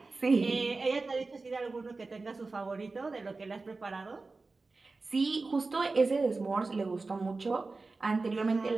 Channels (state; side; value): quieter; left; 3.7 dB